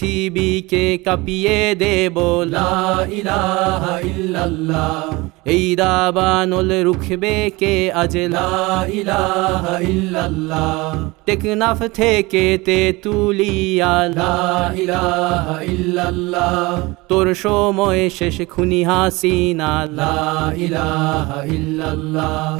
কাঁপিয়ে দেব লা ইলাহা ইল্লাল্লাহ, এই দাবানল রুখবে কে আজ লা ইলাহা ইল্লাল্লাহ, টেকনাফ থেকে তেতুলিয়া লা ইলাহা ইল্লাল্লাহ, তোর সময় শেষ খুনি হাসিনা লা ইলাহা ইল্লাল্লাহ,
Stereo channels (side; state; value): left; quieter; 22.8 dB